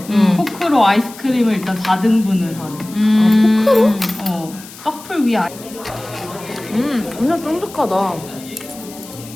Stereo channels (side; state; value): left; noise; hiss, 18 dB below the sound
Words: 포크로 아이스크림을 일단 4등분을 하래. 포크로? 커플 위에 엄청 쫀득하다.